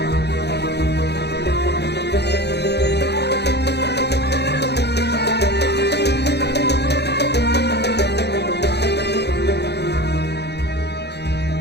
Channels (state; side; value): late; right; 0.49 ms